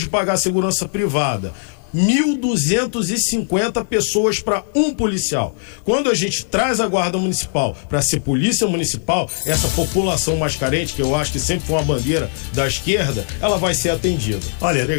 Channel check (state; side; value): silent; right; digital silence